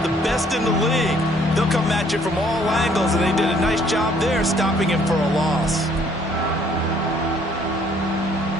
the best in the league. They'll come at you from all angles, and they did a nice job there stopping him for a loss.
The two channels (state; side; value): normal; both; correlation 0.62